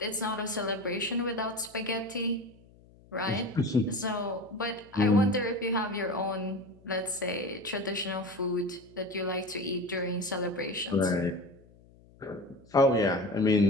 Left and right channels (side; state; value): left; noise; hum, 26 dB below the sound